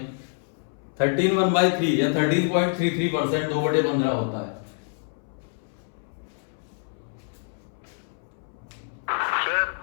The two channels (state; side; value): silent; right; 61 dB below the other